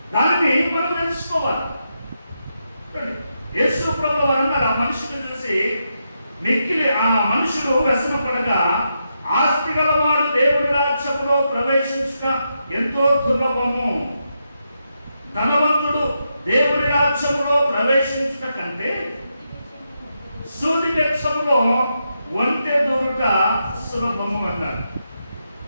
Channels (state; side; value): inverted; both; correlation -0.84